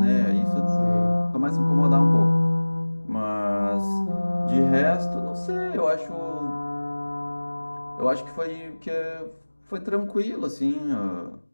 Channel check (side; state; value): both; inverted; correlation -1.00